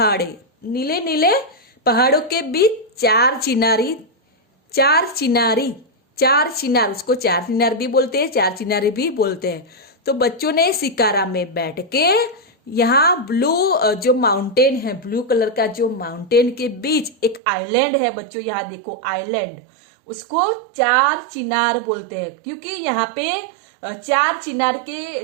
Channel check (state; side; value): drops out; left; at 17.4 s